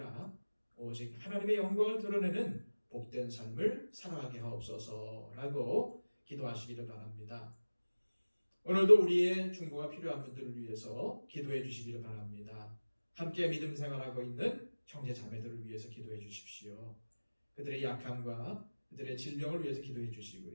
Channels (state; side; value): inverted; both; correlation -1.00